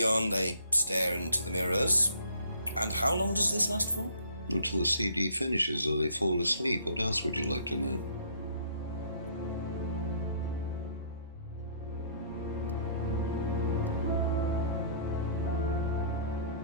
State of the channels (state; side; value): inverted; both; correlation -0.58